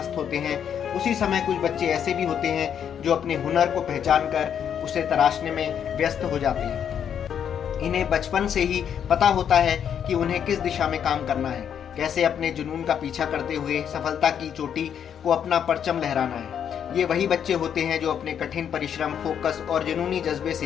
होते हैं, उसी समय कुछ बच्चे ऐसे भी होते हैं जो अपने हुनर को पहचान कर उसे तराशने में व्यस्त हो जाते हैं। इन्हें बचपन से ही पता होता है कि उन्हें किस दिशा में काम करना है, कैसे अपने जुनून का पीछा करते हुए सफलता की चोटी को अपना परचम लहराना है। ये वही बच्चे होते हैं जो अपने कठिन परिश्रम, फोकस और जुनूनी जज्बे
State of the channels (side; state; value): right; quieter; 8.5 dB